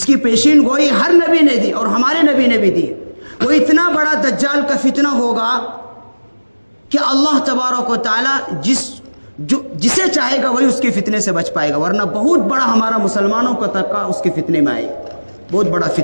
کی پیشین گوئی ہر نبی نے دی اور ہمارے نبی نے بھی دی، وہ اتنا بڑا دجال کا فتنہ ہوگا کہ اللہ تبارک و تعالی جسے چاہے گا وہی اس کے فتنے سے بچ پائے گا، ورنہ بہت بڑا ہمارا مسلمانوں کا طبقہ اس کے فتنے میں آئے گا. بہت بڑا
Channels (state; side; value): inverted; both; correlation -1.00